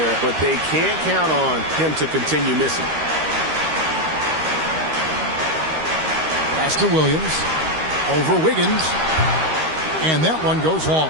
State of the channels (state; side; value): late; left; 13 ms